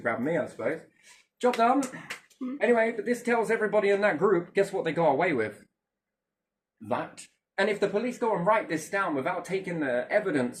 me, I suppose. Job done. Anyway, but this tells everybody in that group, guess what they got away with? That. And if the police go and write this down without taking the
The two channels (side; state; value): both; identical; correlation 1.00